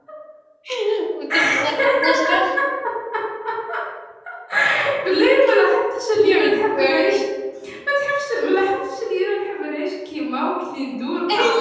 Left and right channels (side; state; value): both; identical; correlation 1.00